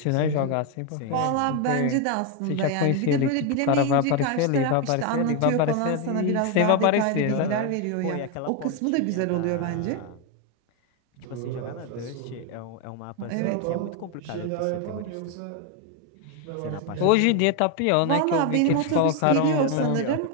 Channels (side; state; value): both; different; correlation 0.02